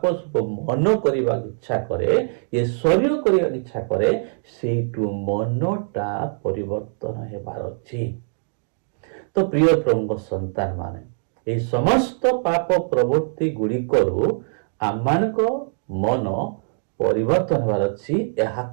ସବୁ ମନ କରିବାକୁ ଇଚ୍ଛା କରେ, ଏ ଶରୀର କରିବାକୁ ଇଚ୍ଛା କରେ, ସେଇଠୁ ମନଟା ପରିବର୍ତ୍ତନ ହେବାର ଅଛି। ତ ପ୍ରିୟ ପ୍ରଭୁଙ୍କ ସନ୍ତାନ ମାନେ, এই ସମସ୍ତ ପାପ ପ୍ରବୃତ୍ତି ଗୁଡ଼ିକରୁ ଆମମାନଙ୍କ ମନ ପରିବର୍ତ୍ତନ ହେବାର ଅଛି।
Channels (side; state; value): left; silent; digital silence